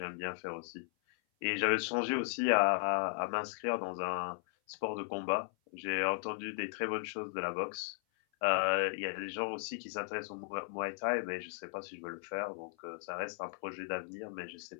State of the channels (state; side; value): silent; right; 53 dB below the other